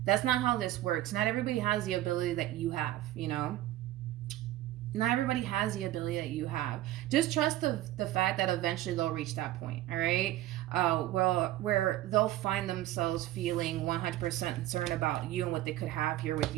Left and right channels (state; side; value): quieter; left; 14.9 dB